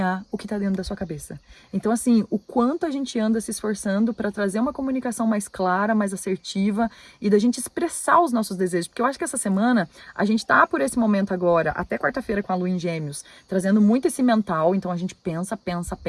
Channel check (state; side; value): identical; both; correlation 1.00